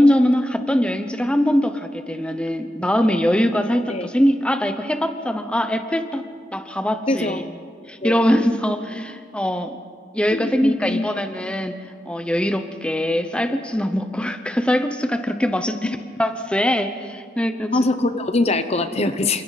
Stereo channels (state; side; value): normal; both; correlation 0.86